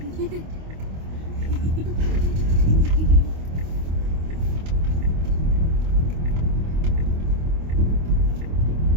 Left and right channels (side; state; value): left; late; 25 ms